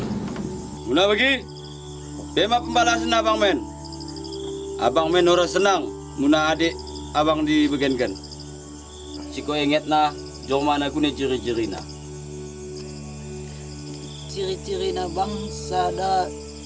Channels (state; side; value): identical; both; correlation 1.00